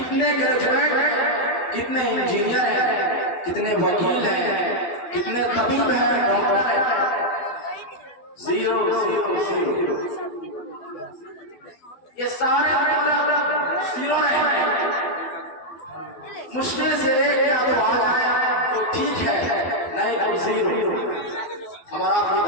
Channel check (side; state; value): right; late; 12 ms